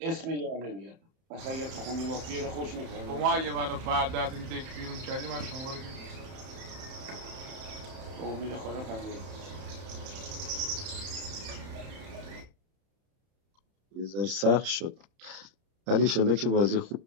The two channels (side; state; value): left; late; 31 ms